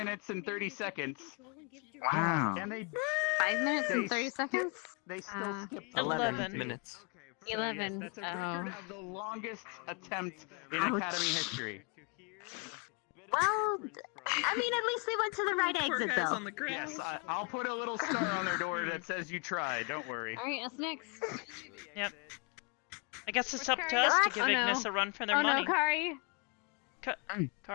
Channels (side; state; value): right; quieter; 33.2 dB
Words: and 30 seconds. Wow. And they 5 minutes and They 30 skip- seconds. they still skipped 11 minutes. So, yes, 11. that's a record of the longest attempt in Ouch. Academy history. Well, I mean, at least they went to the right Poor exit, guy's though. on the ground. Yes, I'll put a little star on their door that says you tried. Don't worry. All right, us next. Yep. I guess it's Where's up to Kari? us to give Oh, no. Ignis a run for their Oh money. no, Kari.